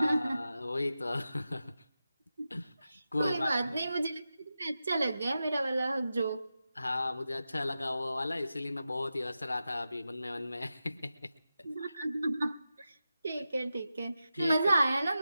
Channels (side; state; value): both; inverted; correlation -0.91